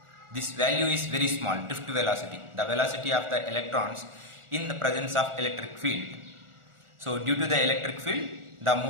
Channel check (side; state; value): left; late; 1.4 ms